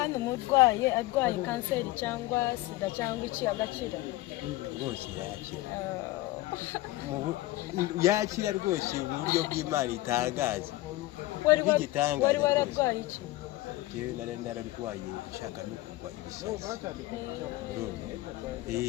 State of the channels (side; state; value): right; quieter; 18.0 dB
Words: umurwaye arwaye kanseri cyangwa sida cyangwa iki agakira rwose yakira rwose mu buryo bw'Imana itangaje wari wararwaye iki jewe nararwaye ishaka no kugwa ibisazi